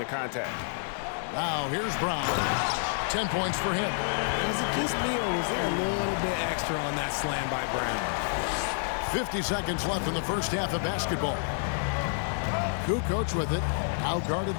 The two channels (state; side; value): silent; right; 59 dB below the other